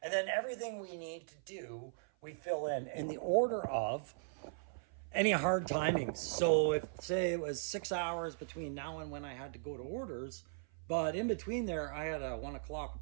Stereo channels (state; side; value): silent; left; 52 dB below the other